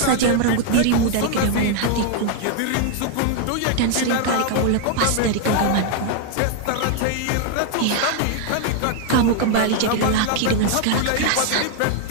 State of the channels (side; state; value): both; different; correlation 0.00